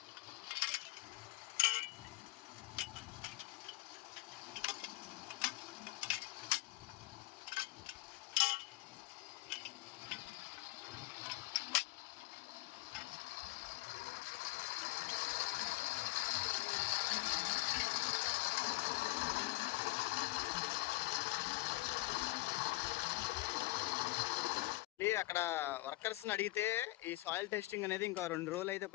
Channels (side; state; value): right; quieter; 20.5 dB